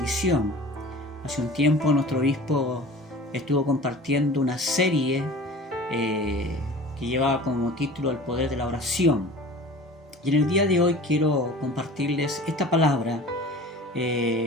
Hace un tiempo nuestro obispo estuvo compartiendo una serie que llevaba como título El poder de la oración. Y en el día de hoy quiero compartirles esta palabra,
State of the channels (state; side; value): normal; both; correlation 0.40